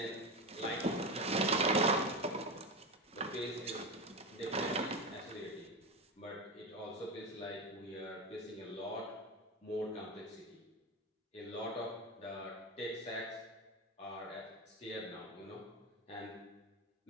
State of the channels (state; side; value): normal; both; correlation 0.19